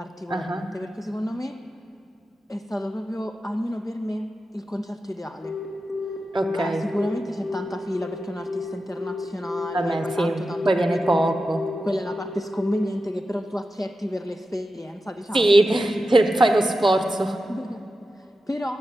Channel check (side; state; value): both; normal; correlation 0.91